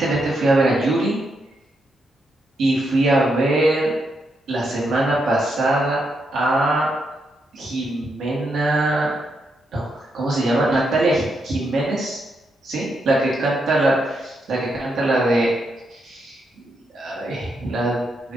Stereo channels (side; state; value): both; normal; correlation 0.81